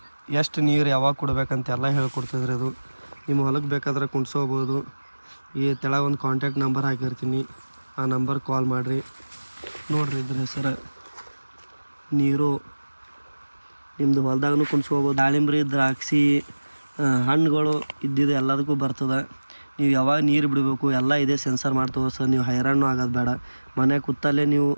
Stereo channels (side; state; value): both; inverted; correlation -1.00